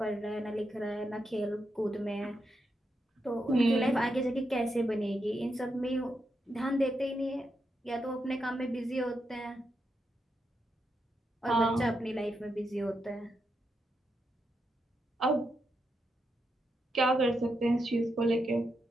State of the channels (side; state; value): both; normal; correlation 0.84